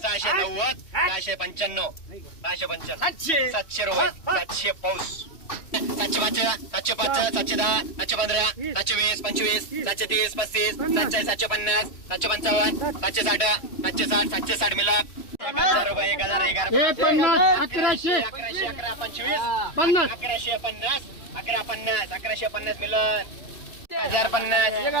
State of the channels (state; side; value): late; right; 3.1 ms